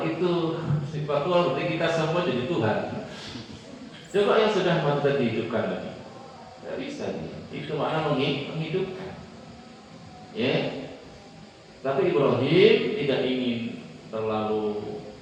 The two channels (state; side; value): identical; both; correlation 1.00